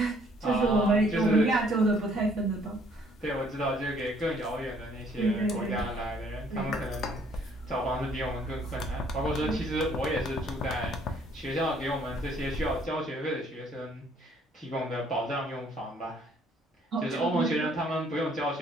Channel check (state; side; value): normal; both; correlation 0.62